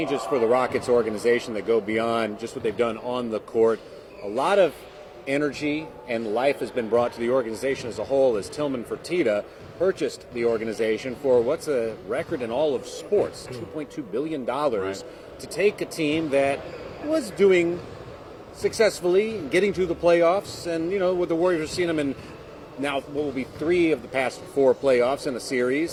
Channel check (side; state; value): both; identical; correlation 1.00